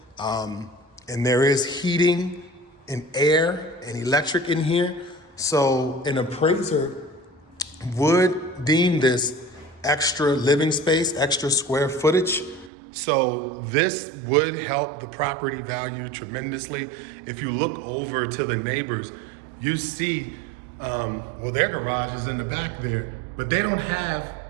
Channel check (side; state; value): left; drops out; at 12.7 s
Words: and there is heating and air and electric in here. So an appraiser would deem this extra living space, extra square footage. So this would help the property value tremendously. If you look over to the neighbors, you see, well, their garage is in the back there, but they don't have